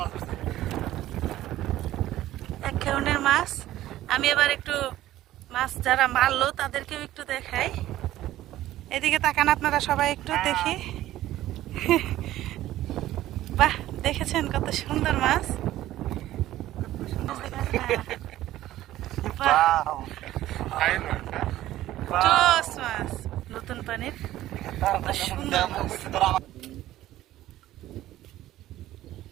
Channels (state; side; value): quieter; left; 14.5 dB